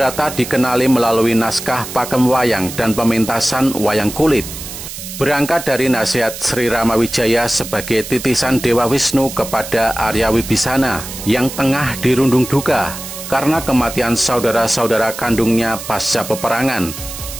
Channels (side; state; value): right; noise; hiss, 10 dB below the sound